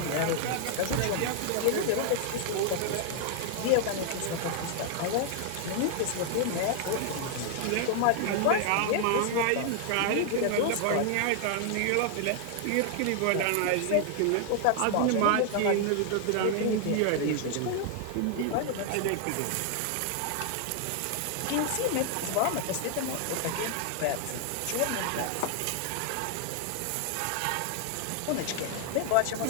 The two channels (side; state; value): both; different; correlation 0.00